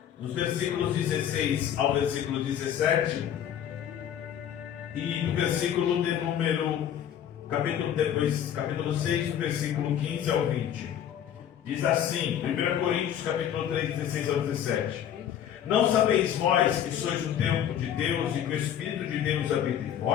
dos versículos 16 ao versículo 17, e do versículo de número, capítulo 6, do versículo 15 ao 20, diz assim, 1 Coríntios capítulo 3, 16 ao 17: não sabeis vós que sois o templo de Deus e que o Espírito de Deus habita em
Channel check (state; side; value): quieter; right; 9.8 dB